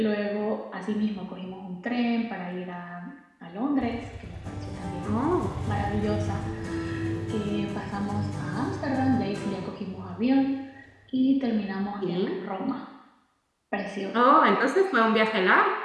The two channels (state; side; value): identical; both; correlation 1.00